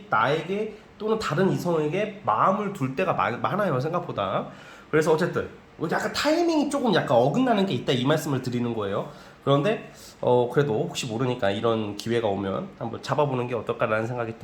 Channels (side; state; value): both; identical; correlation 1.00